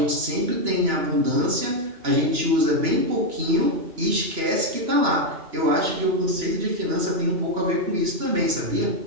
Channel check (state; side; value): late; left; 2.9 ms